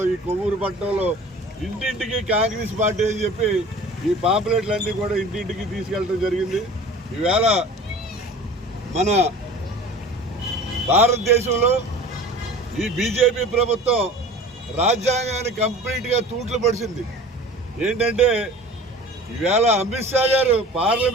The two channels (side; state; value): both; normal; correlation 0.41